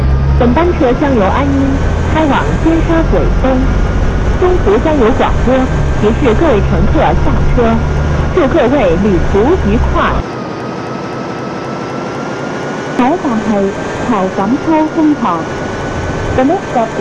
本班车将由安阴开往尖沙咀东，中途将有廣播提示各位乘客下車。祝各位旅途愉快。下一站係侯錦秋中學。The next stop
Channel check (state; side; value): identical; both; correlation 1.00